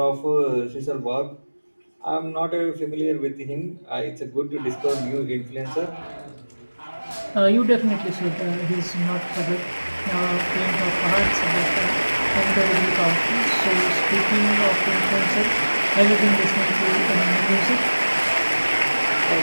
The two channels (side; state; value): both; inverted; correlation -1.00